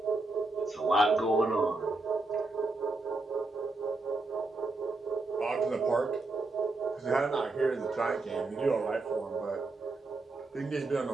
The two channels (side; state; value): left; quieter; 3.3 dB